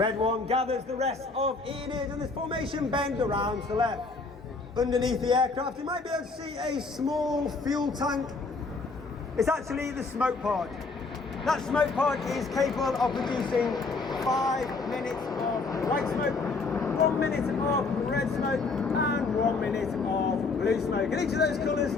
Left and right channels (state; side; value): quieter; right; 4.0 dB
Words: 1 gathers the rest of Enid and this formation bend around to the left. Underneath the aircraft you might be able to see a small fuel tank. It's actually the smoke pod. That smoke pod is capable of producing 5 minutes of white smoke, 1 minute of red smoke and 1 minute of blue smoke. And each of those colours